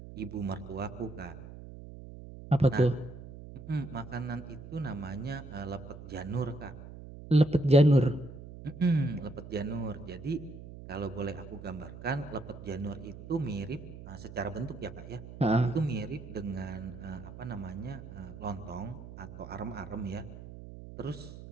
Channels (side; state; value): right; noise; hum, 13 dB below the sound